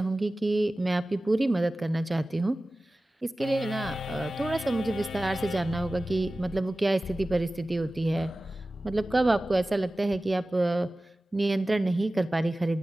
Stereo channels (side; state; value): both; normal; correlation 0.96